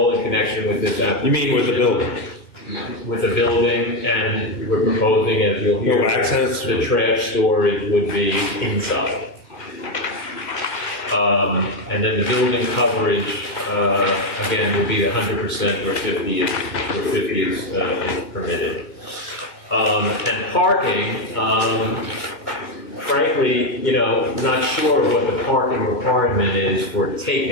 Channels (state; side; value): late; right; 2.1 ms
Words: in connection with this application. You mean with the building? With the building, and we're proposing, as you'll hear, no access? The trash storage would be inside. And then the building coverage, again, will be 100% where 50 is permitted. And parking, frankly, not sure what the parking requirement is for